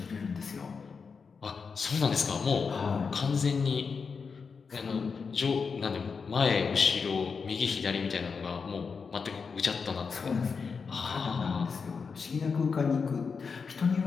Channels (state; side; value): quieter; right; 5.4 dB